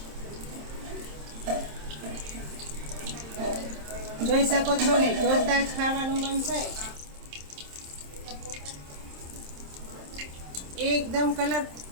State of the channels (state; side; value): late; left; 27 ms